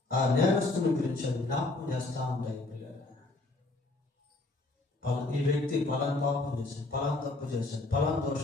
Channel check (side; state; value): right; quieter; 3.1 dB